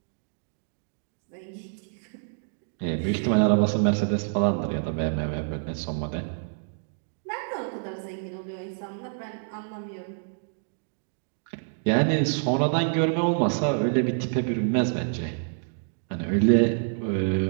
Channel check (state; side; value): silent; left; digital silence